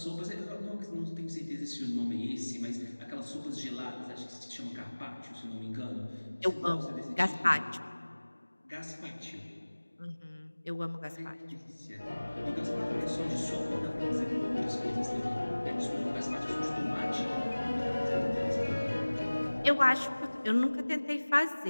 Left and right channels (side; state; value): both; inverted; correlation -1.00